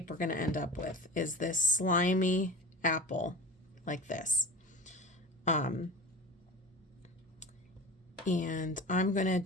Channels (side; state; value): both; normal; correlation 0.32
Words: we're going to end up with, is this slimy apple like this. And I'm going to